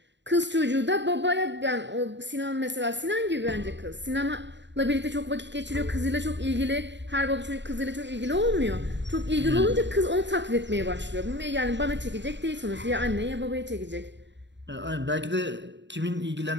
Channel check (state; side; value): late; left; 0.52 ms